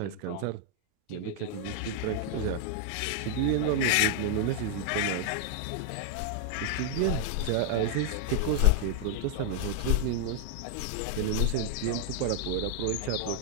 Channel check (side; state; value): both; different; correlation 0.00